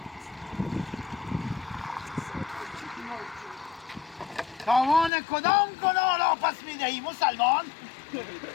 تاوان کدام گناه را پس می‌دهی مسلمان؟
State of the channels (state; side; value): drops out; right; at 5.1 s